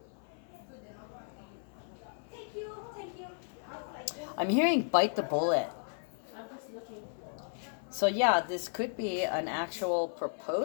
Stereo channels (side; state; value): right; silent; 55 dB below the other